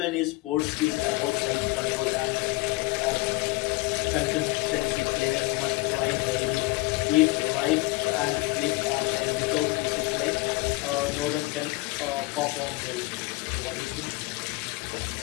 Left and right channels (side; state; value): right; quieter; 21.8 dB